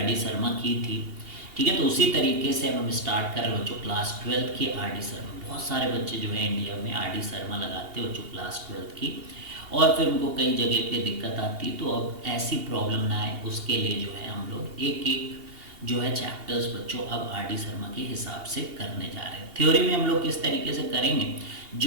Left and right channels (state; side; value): late; left; 2.8 ms